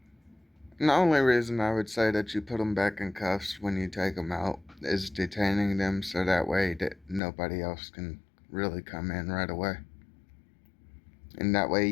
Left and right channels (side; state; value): right; drops out; at 7.2 s